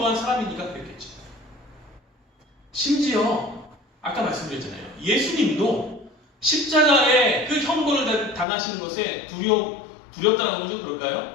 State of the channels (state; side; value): drops out; right; at 8.5 s